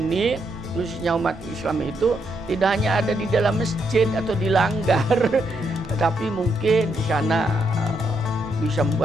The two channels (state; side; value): normal; both; correlation 0.78